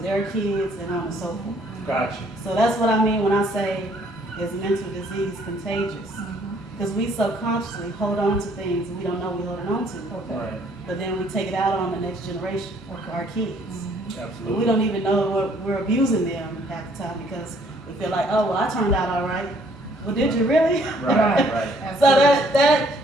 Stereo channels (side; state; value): both; normal; correlation 0.63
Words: kids, and on and so forth. Gotcha. So that's what I mean when I say, is mental disease contagious? Because we subconsciously hold on to things we don't know we're holding on to. Right. But then we take it out on the next generation, our kids. Absolutely. We don't even know we're abusing them half the time because we feel like, oh, well, I turned out all right. Well, did you really? Right. So